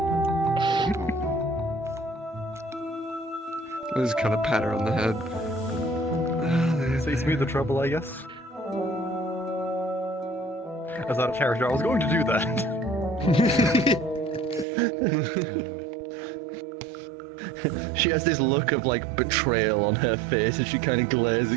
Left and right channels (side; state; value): left; drops out; at 14.7 s